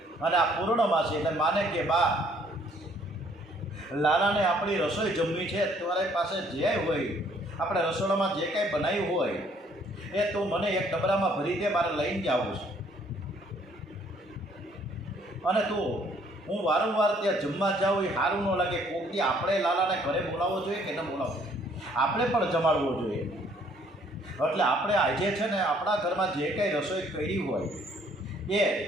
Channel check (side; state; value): both; normal; correlation 0.63